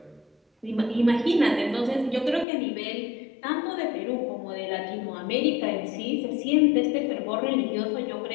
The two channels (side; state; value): right; drops out; at 2.5 s